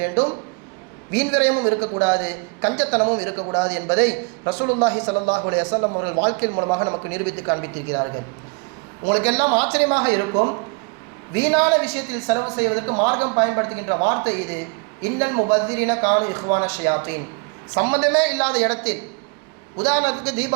வேண்டும், வீண் விரயமும் இருக்கக்கூடாது, கஞ்சத்தனமும் இருக்கக்கூடாது என்பதை ரசூலுல்லாஹி ஸல்லல்லாஹு அலைஹி வஸல்லம் அவர்கள் வாழ்க்கையின் மூலமாக நமக்கு நிரூபித்து காண்பித்திருக்கிறார்கள். உங்களுக்கு எல்லாம் ஆச்சரியமாக இருக்கும், வீணான விஷயத்தில் செலவு செய்வதற்கு மார்க்கம் பயன்படுத்துகின்ற வார்த்தை இது. இன்னல் முபத்திரின கானு இஹ்வான ஷயாத்தீன். சம்பந்தமே இல்லாத இடத்தில், உதாரணத்துக்கு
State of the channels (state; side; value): quieter; left; 32.1 dB